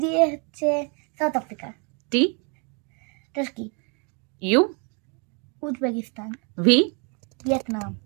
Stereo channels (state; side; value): quieter; left; 35.9 dB